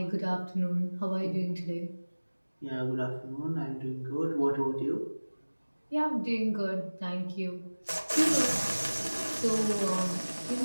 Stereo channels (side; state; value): both; inverted; correlation -1.00